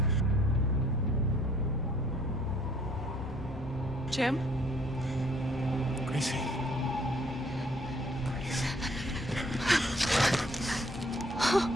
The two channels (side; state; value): both; normal; correlation 0.61